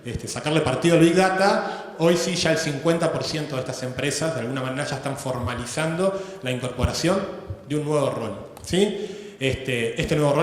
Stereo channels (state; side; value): identical; both; correlation 1.00